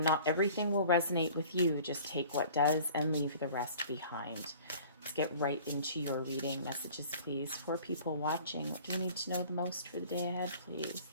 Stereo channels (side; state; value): both; inverted; correlation -0.47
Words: everything will resonate with you. Just take what does and leave the rest behind. Let's get right into your reading. Messages, please, for people watching. What do you need to know the most for the day ahead, please?